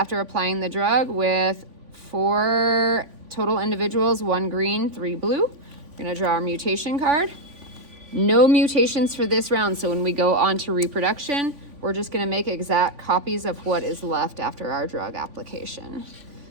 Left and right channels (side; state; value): left; late; 3.5 ms